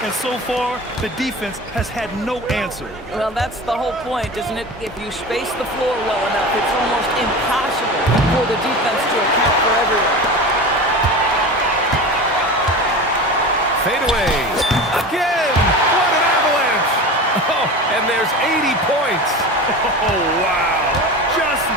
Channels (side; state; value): both; normal; correlation 0.31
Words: And so far, the defense has had no answer. Well, that's the whole point, isn't it? If you space the floor well enough, it's almost impossible for the defense to account for everyone. Fade away. Again! What an avalanche! Oh, and there's 80 points. Oh, wow. Just